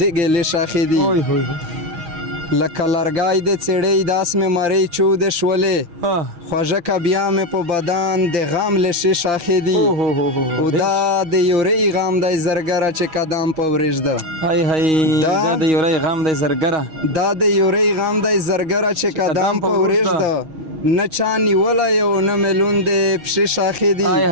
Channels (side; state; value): left; late; 6.3 ms